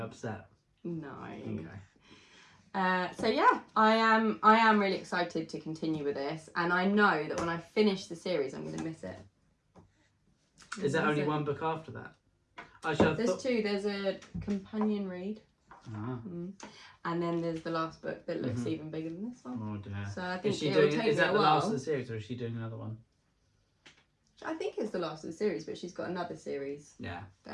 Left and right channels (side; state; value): both; identical; correlation 1.00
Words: No. Okay. So yeah, I am really excited to continue with this, and I know that when I finish the series, I'm going to miss it. Is there only one book after that? Actually, I There's thought... two. There's a companion read, Ah. and then there's the last book that looks even bigger than this one. Oh dear. So I think Is she it will doing? take Is me that a the last of while. the series, or is she doing another one? I think it's the last of the series, but she's got another series Yeah.